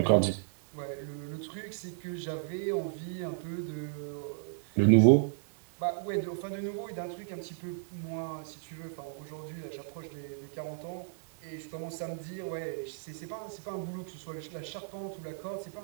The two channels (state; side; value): silent; left; digital silence